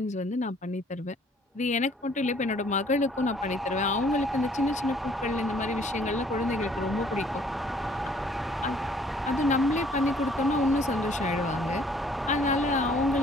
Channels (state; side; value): normal; both; correlation 0.60